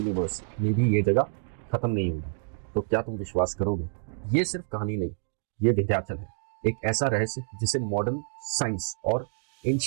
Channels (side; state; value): left; silent; 59 dB below the other